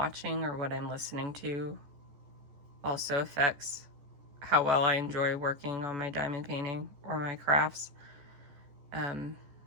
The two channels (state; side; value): late; left; 14 ms